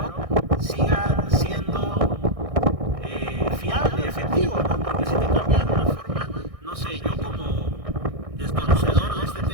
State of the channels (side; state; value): left; late; 1.6 ms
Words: siga siendo fiable, efectivo, ¿no? Porque si te cambian de una forma, no sé, yo como desconocedor de este